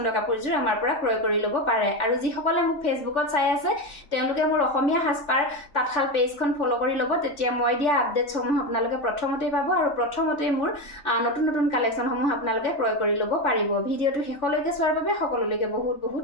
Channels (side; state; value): right; late; 3.4 ms